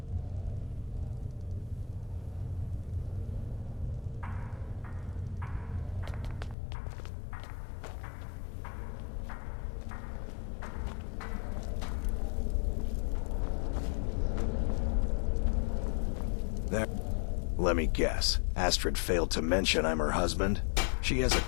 There. Let me guess. Astrid failed to mention I'm her husband? She has a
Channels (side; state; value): right; drops out; at 6.6 s